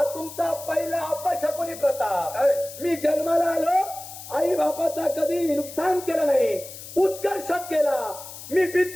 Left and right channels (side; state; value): left; noise; hiss, 13 dB below the sound